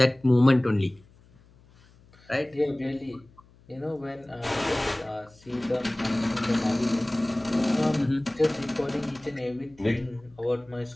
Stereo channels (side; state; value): left; noise; hum, 28 dB below the sound